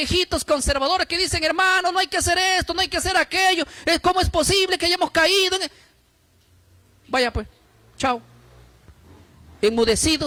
conservadores que dicen, hermano, no hay que hacer esto, no hay que hacer aquello. ¿Cómo es posible que hayamos caído? Vaya pues, chao.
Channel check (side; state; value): both; identical; correlation 1.00